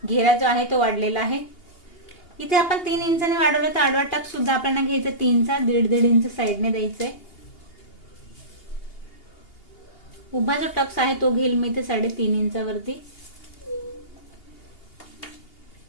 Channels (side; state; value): right; late; 2.8 ms